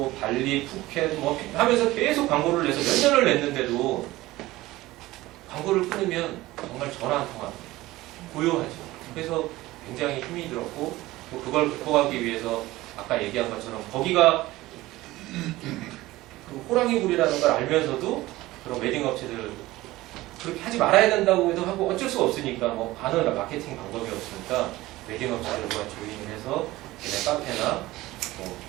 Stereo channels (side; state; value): left; quieter; 18.0 dB